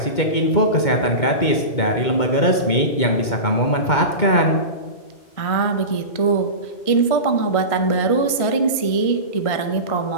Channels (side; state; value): right; late; 2.2 ms